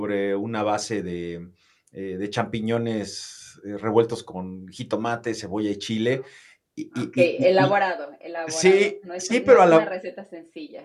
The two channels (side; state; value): both; identical; correlation 1.00